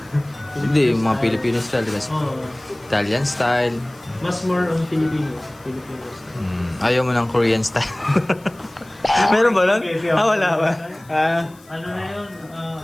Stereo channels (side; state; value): left; noise; hiss, 27 dB below the sound